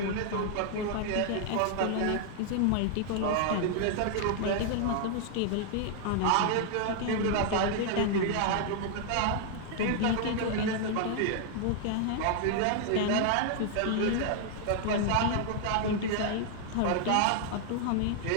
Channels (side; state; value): both; different; correlation 0.00